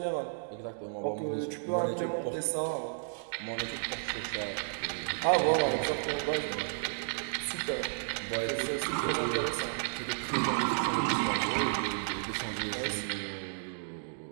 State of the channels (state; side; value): silent; left; digital silence